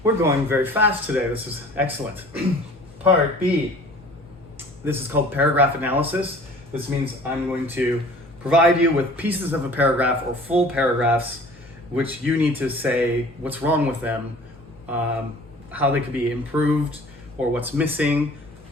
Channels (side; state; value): both; normal; correlation 0.47